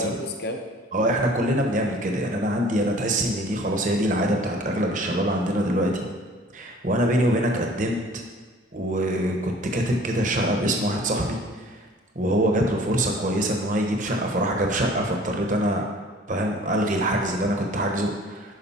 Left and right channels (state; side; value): normal; both; correlation 0.50